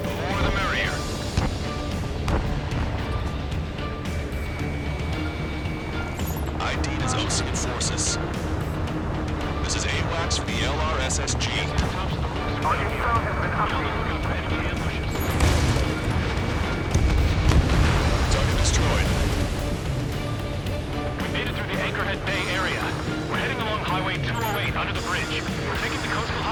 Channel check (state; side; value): identical; both; correlation 1.00